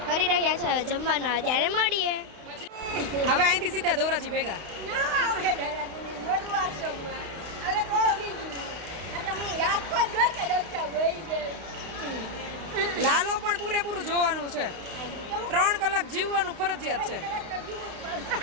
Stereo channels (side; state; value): left; late; 32 ms